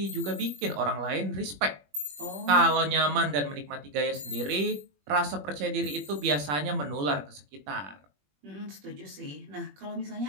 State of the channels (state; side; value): late; left; 21 ms